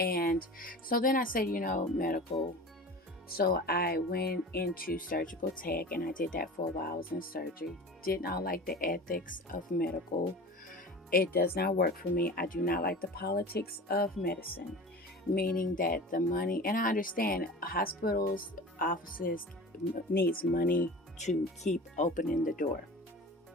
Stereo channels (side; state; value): both; normal; correlation 0.36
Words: so then I said, medical. So I went into surgical tech and I did that for a while. I was in surgery. Did not like the ethics of medical. It does not work for me. I do not like the politics of medicine, meaning that the money, and I understand hospitals, offices needs money to keep opening the door.